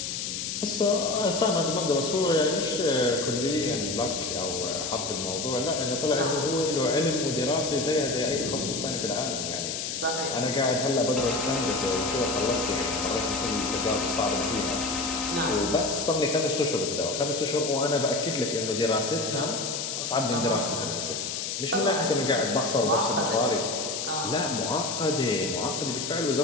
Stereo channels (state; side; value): noise; left; hiss, 4 dB below the sound